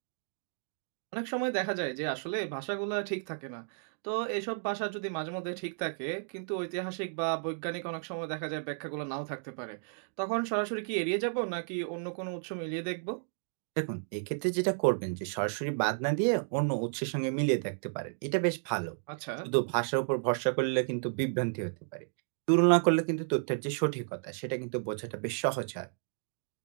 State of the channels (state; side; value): silent; left; digital silence